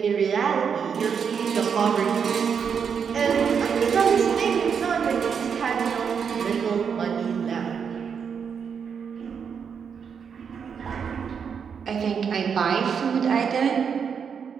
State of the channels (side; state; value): left; quieter; 6.8 dB